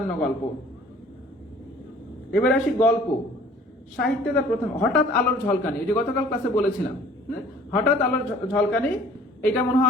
গল্প। এবার আসি গল্প সাহিত্যে, তার প্রথম হঠাৎ আলোর ঝলকানি, ওই যে গতকাল ক্লাসে বলেছিলাম, হঠাৎ আলোর ঝলকানি, এটা মনে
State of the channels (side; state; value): both; normal; correlation 0.52